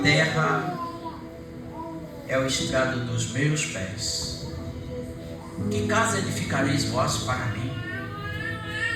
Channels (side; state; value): both; identical; correlation 1.00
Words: terra é o estrado dos meus pés. Que casa edificareis vós para mim?